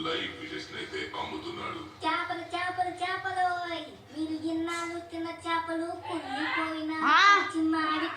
లైవ్ ఫిషెస్ అయితే అమ్ముతున్నాడు. చేపలు చేపలు చేపలు, మీరు ఇన్నాళ్ళు తిన్న చేపలు కుళ్ళిపోయిన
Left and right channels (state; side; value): identical; both; correlation 1.00